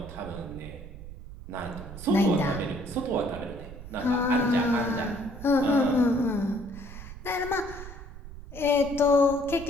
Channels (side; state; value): right; noise; rumble, 13 dB below the sound